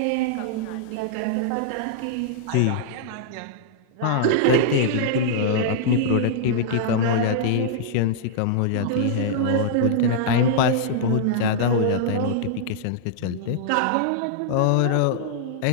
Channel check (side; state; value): both; different; correlation -0.01